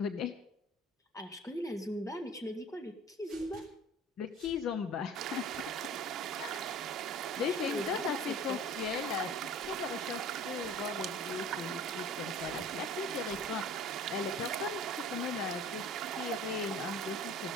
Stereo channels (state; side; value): normal; both; correlation 0.43